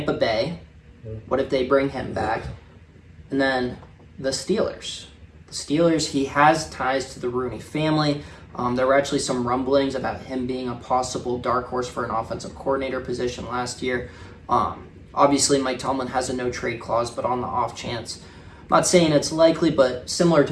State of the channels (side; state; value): both; identical; correlation 1.00